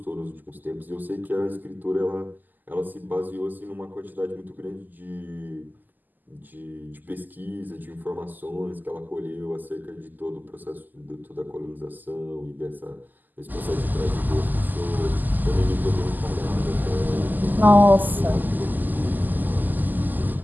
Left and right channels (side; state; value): left; late; 0.086 ms